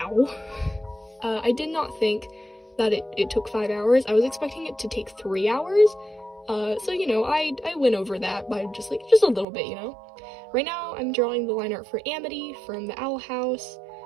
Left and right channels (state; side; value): drops out; left; at 9.5 s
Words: I did not think that it took 5 hours. I was expecting it to take 3 hours, so, you know, I went over that by just a little bit, you know? Right now, I'm drawing the line art for Amity from the Owl House,